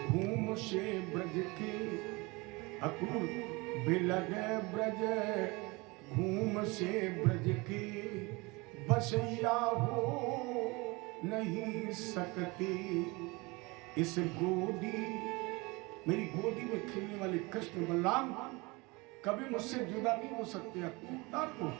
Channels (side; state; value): left; quieter; 25.3 dB